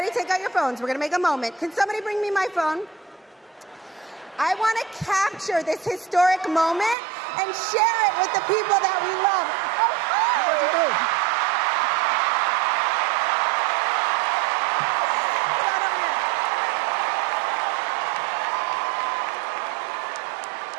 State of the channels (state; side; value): drops out; left; at 7.0 s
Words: take out your phones. We're going to make a moment. Can somebody bring me my phone? I want to capture this historic moment and share it with the people that we love. What'd you do?